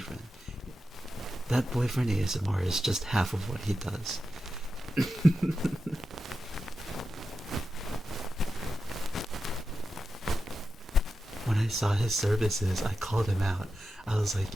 That boyfriend ASMR is just half of what he does. When I saw his services, I called him out. I was like,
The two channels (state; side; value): normal; both; correlation 0.90